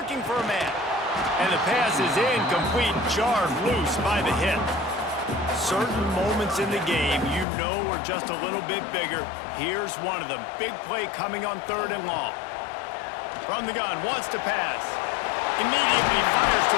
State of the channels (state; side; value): drops out; right; at 7.5 s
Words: for a man. And the pass is incomplete, jarred loose by the hit. Certain moments in the game you know are just a little bit bigger. Here's one of them. Big play coming on third and long. From the gun, wants to pass. Immediately fires to